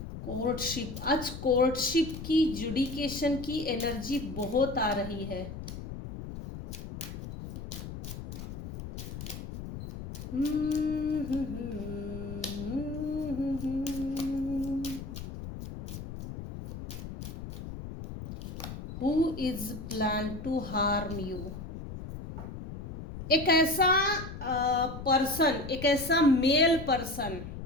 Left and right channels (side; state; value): left; noise; rumble, 9 dB below the sound